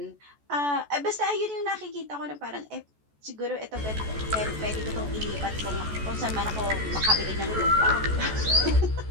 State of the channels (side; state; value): left; late; 14 ms